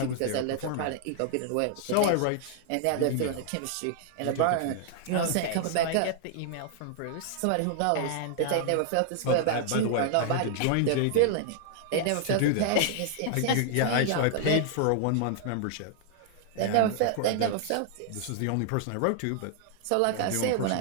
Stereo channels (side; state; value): both; different; correlation 0.00